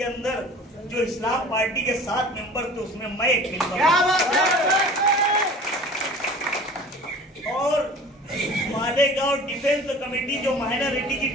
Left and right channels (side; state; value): both; normal; correlation 0.43